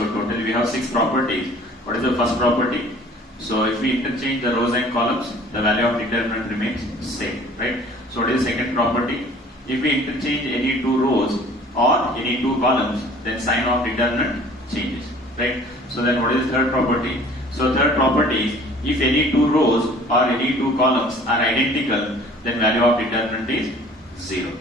totally we have 6 properties. What is the first property? So if we interchange the rows and columns, the value of determinant remains same, right? So what is the second property? If we interchange any 2 rows or any 2 columns, then sign of determinant changes, right? So then what is the third property? So third property is, if any 2 rows or any 2 columns are identical, then value of determinant is 0,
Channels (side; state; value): both; normal; correlation 0.50